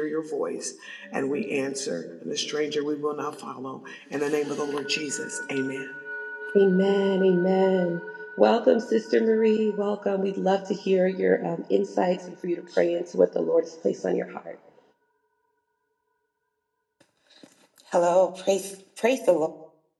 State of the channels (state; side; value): identical; both; correlation 1.00